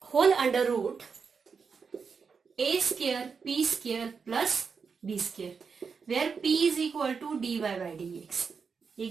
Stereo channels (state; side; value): quieter; left; 5.6 dB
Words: whole under root a square p square plus b square, where p is equal to dy by dx। ये